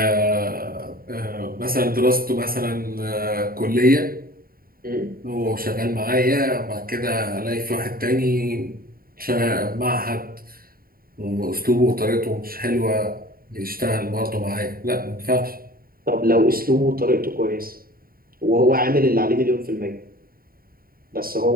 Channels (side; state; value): left; late; 0.43 ms